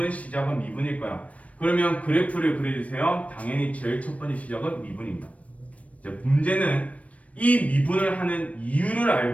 시작은 미분일 거야. 그러면 그래프를 그려주세요. 당연히 제일 첫 번째 시작은 미분입니다. 이제 문제는 이 미분을 하는 이유를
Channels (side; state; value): right; late; 0.066 ms